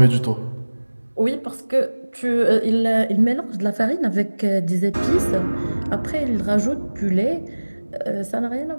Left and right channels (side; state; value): both; inverted; correlation -1.00